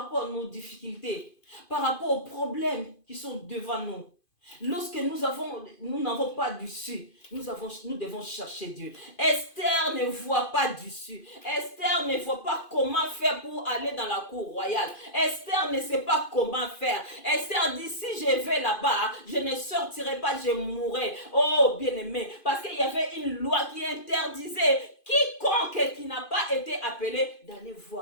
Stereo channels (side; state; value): right; late; 2.5 ms